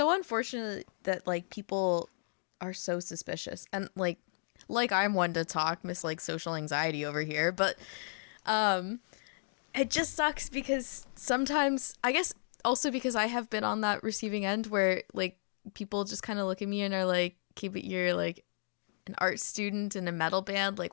unfortunate that like people are so suspicious. Yeah. And like I'm one to talk this like social anxiety over here, but it just sucks because sometimes, I guess also because I have been on that receiving end where like people just kind of look at me and are like, keep it, you're like an art student in a metal band, like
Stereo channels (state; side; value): silent; right; digital silence